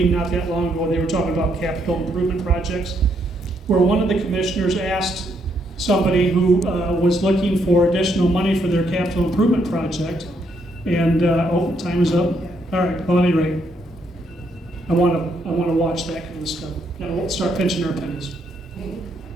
not that long ago. They were talking about capital improvement projects, where one of the commissioners asked somebody who was looking for additional money for their capital improvement project, and time is up. All right. Well, at any rate, I want to watch that kind of stuff. I won't start pinching our pennies.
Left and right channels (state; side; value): normal; both; correlation 0.74